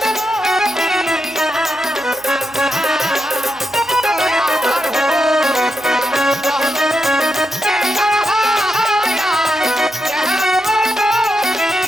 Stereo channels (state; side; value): noise; right; hum, 27 dB below the sound